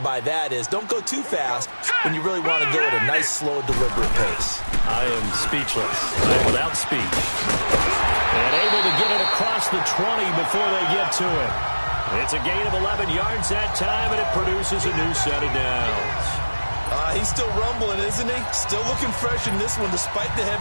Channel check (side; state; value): both; inverted; correlation -1.00